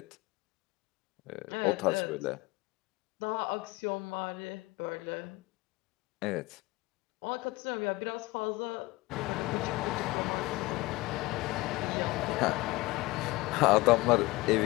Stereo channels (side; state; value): right; quieter; 21.3 dB